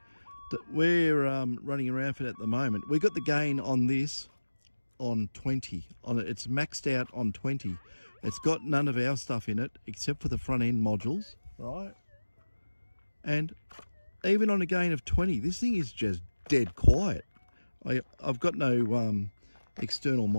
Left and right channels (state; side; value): inverted; both; correlation -1.00